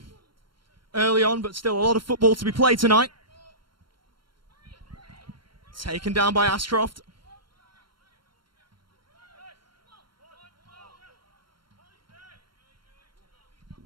early on, but still a lot of football to be played tonight. Taken down by Ashcroft.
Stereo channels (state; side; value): late; left; 0.73 ms